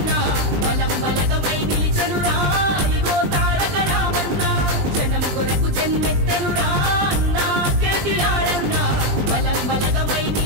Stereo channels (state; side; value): late; left; 20 ms